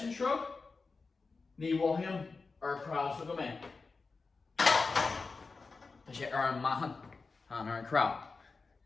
shrug, ni him crowd him in. To say mahan, and crowd.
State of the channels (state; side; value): quieter; right; 4.2 dB